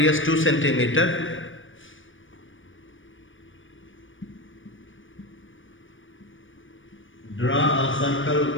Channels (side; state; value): right; late; 0.57 ms